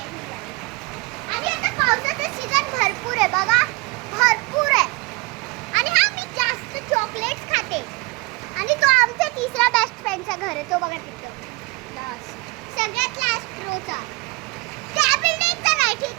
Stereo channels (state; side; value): quieter; left; 25.9 dB